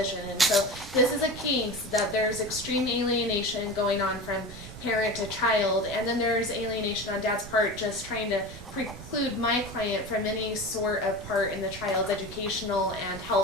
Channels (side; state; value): right; noise; rumble, 14 dB below the sound